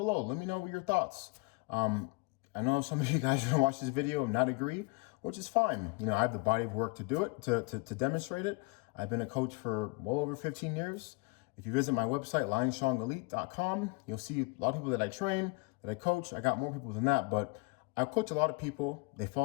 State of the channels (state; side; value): quieter; right; 28.6 dB